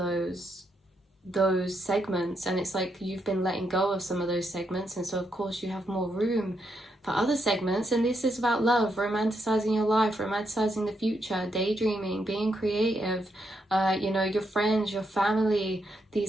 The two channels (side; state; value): both; normal; correlation 0.80